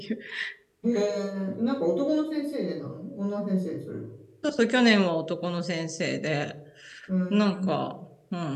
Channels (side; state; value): both; identical; correlation 1.00